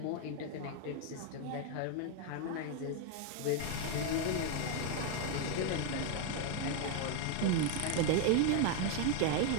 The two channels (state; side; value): different; both; correlation 0.01